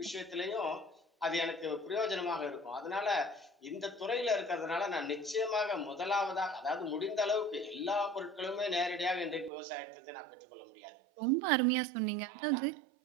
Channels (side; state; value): left; drops out; at 9.5 s